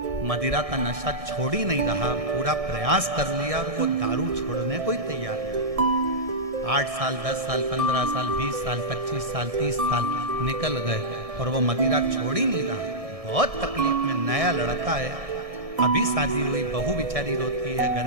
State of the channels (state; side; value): late; left; 1.6 ms